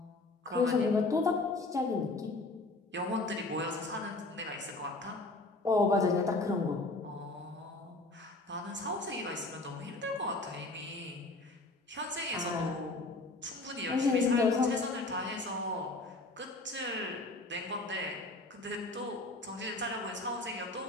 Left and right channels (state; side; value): quieter; right; 3.0 dB